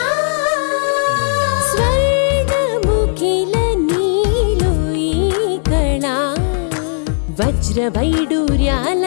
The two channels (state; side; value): silent; right; digital silence